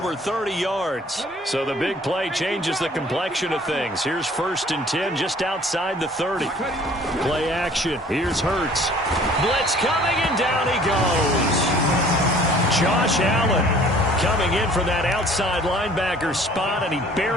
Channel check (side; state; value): both; normal; correlation 0.53